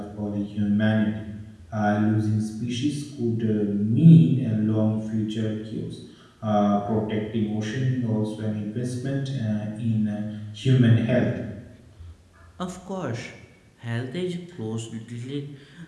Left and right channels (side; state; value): both; identical; correlation 1.00